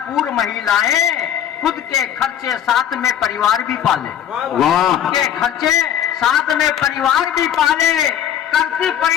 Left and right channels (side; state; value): right; quieter; 9.8 dB